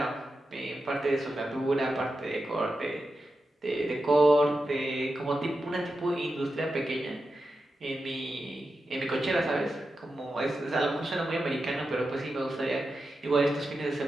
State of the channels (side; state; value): both; normal; correlation 0.90